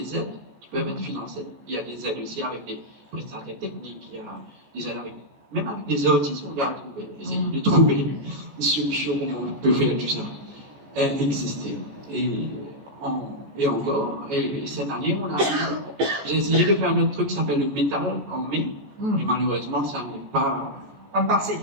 aides qui peuvent être financées. Il y a des aides aussi avec des prestataires techniques, il y a des aides avec. Même avec des artistes, on va essayer de trouver une solution comment on peut faire tout ça exister. Et encore, et cette année, j'ai essayé de faire un autre truc qui s'appelle le métal en mai, mais malheureusement, ça n'est pas passé.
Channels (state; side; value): late; left; 14 ms